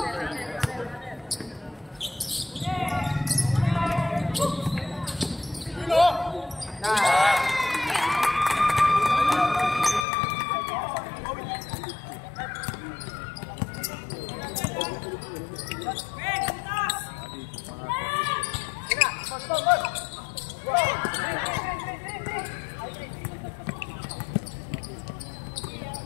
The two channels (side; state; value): right; drops out; at 10.1 s